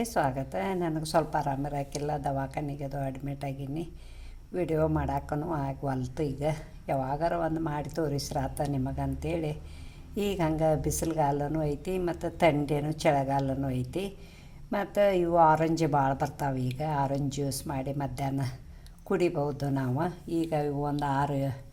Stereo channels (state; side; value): identical; both; correlation 1.00